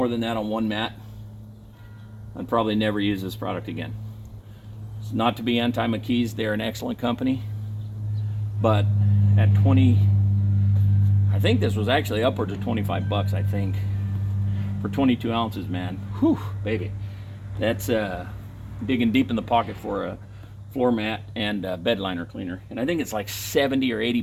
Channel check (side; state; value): both; identical; correlation 1.00